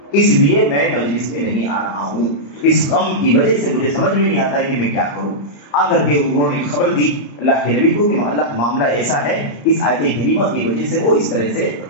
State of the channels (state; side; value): late; right; 35 ms